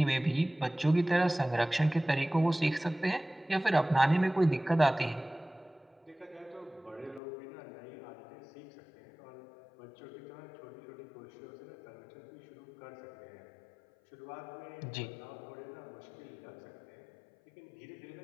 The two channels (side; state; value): right; drops out; at 7.2 s